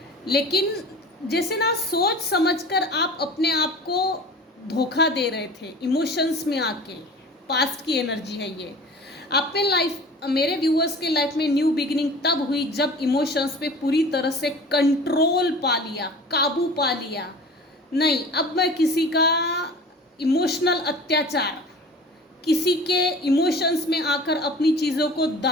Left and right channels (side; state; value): both; normal; correlation 0.40